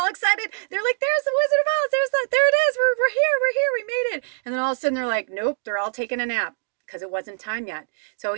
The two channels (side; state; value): left; silent; digital silence